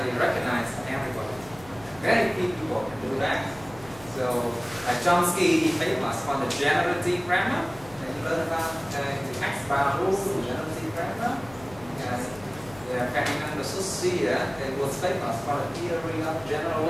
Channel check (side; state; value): left; noise; hum, 21 dB below the sound